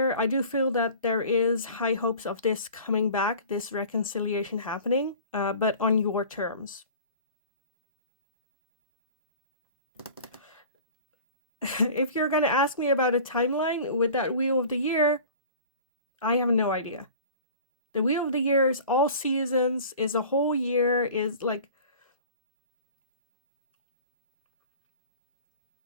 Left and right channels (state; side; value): inverted; both; correlation -0.43